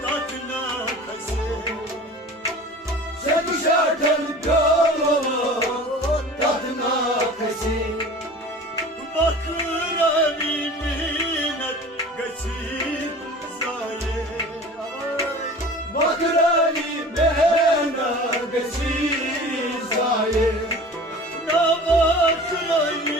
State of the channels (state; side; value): normal; both; correlation 0.40